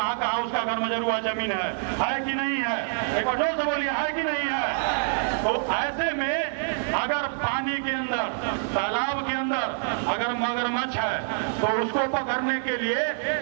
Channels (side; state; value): left; silent; 61 dB below the other